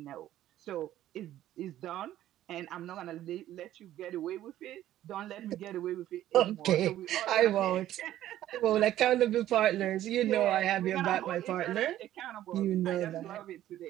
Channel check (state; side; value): quieter; left; 13.0 dB